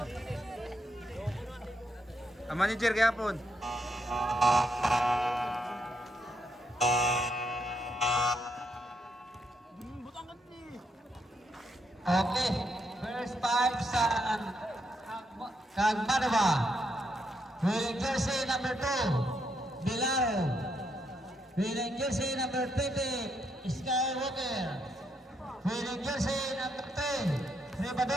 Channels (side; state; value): both; normal; correlation 0.78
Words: Ang manager kayapon. Okay, first five sa Kagmanova. Winning jersey number 2, Bilaro. Winning jersey number 20, Skywalker. Winning jersey number 10,